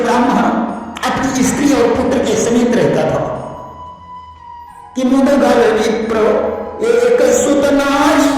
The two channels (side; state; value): both; identical; correlation 1.00